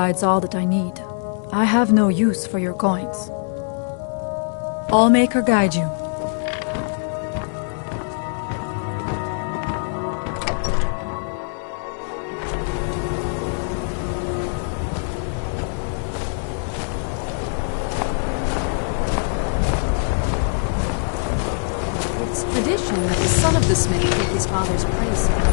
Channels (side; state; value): right; silent; 64 dB below the other